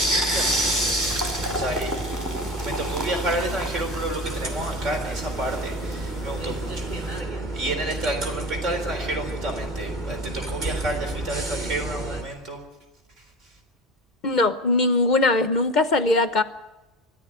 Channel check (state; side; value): normal; both; correlation 0.31